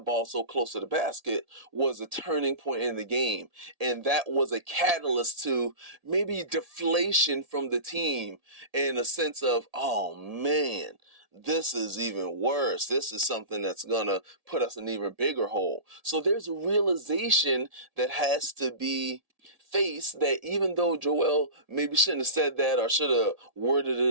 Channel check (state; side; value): late; left; 1.8 ms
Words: ball so close to the basket was a turning point in the game. And that was a catalyst to maybe deflation from the team in a sense of, oh man, this is even worse. This is something that's going to put us in an even bigger hole. So there's a realization that has to be face that even though Joel maybe shouldn't have said that or should have worded